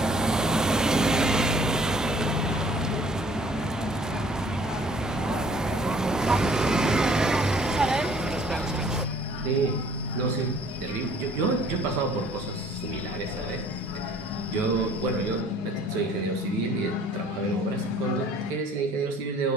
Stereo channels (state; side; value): normal; both; correlation 0.56